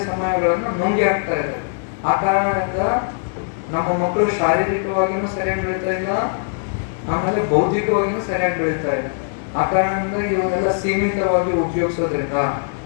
ಸಮಯಗಳನ್ನ ನುಂಗಿ ಹಾಕ್ತಾ ಇದ್ದಾವೆ. ಆ ಕಾರಣದಿಂದ ನಮ್ಮ ಮಕ್ಕಳು ಶಾರೀರಿಕವಾಗಿನೂ ಸರಿಯಾಗಿ ಬೆಳೀತಾ ಇಲ್ಲ, ಆಮೇಲೆ ಬೌದ್ಧಿಕವಾಗಿನೂ ಸರಿಯಾಗಿ ಬೆಳೀತಾ ಇಲ್ಲ. ಆ ಕಾರಣದಿಂದ ಇವನ್ನೆಲ್ಲ ಸೀಮಿತವಾಗಿ ಉಪಯೋಗಿಸೋದ್ರಿಂದ,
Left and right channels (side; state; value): right; silent; digital silence